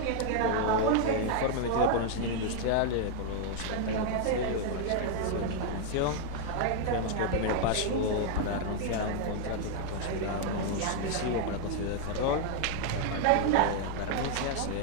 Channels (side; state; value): both; different; correlation 0.00